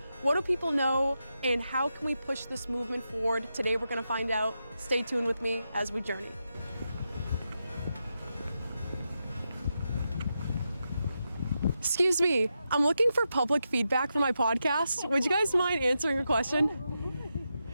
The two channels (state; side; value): inverted; both; correlation -0.87